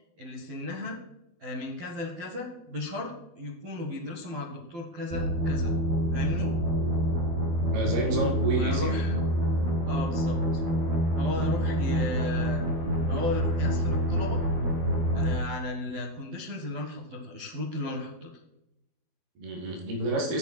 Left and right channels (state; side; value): late; left; 12 ms